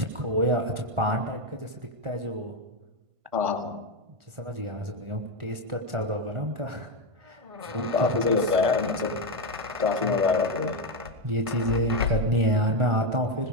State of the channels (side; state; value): left; late; 1.5 ms